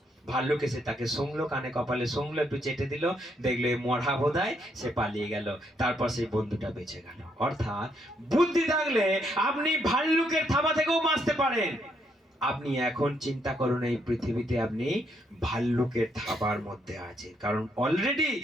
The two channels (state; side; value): normal; both; correlation 0.74